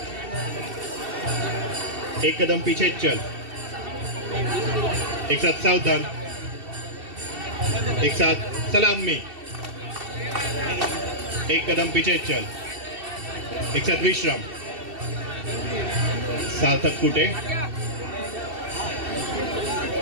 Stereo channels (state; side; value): late; left; 2.7 ms